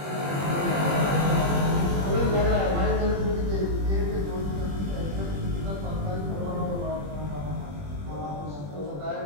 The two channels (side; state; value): left; late; 21 ms